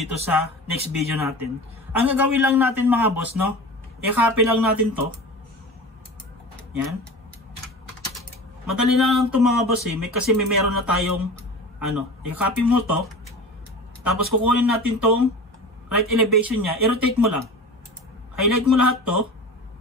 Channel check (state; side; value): normal; both; correlation 0.34